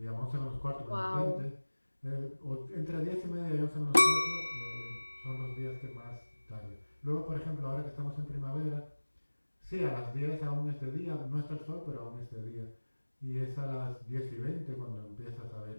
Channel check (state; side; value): inverted; both; correlation -1.00